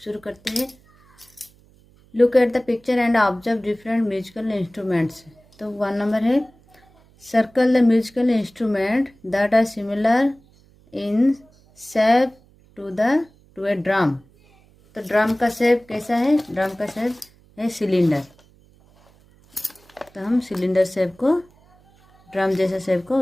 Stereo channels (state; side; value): noise; right; hum, 30 dB below the sound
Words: करते हैं। Look at the picture and observe different musical instruments. तो 1 नंबर है, circle the musical instrument that are similar in shape to a drum. तो ड्रम का शेप कैसा है? ड्रम का शेप है सिलेंडर। तो हम सिलेंडर शेप को, ड्रम जैसा शेप को,